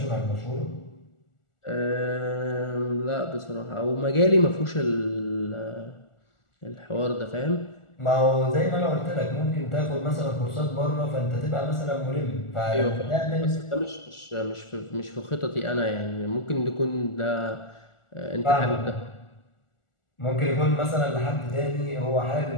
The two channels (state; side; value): late; right; 1.4 ms